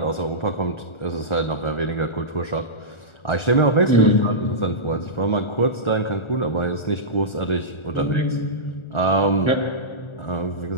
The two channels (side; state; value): right; late; 1.4 ms